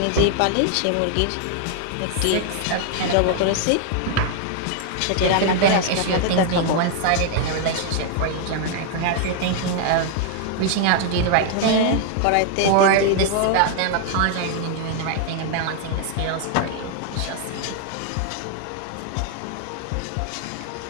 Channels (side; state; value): both; different; correlation 0.00